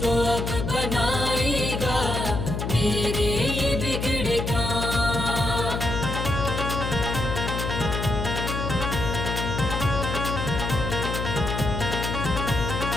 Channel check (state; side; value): noise; left; hum, 3 dB below the sound